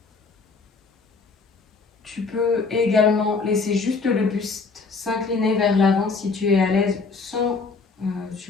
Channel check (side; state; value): right; quieter; 4.4 dB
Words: Tu peux également laisser juste le buste s'incliner vers l'avant si tu es à l'aise sans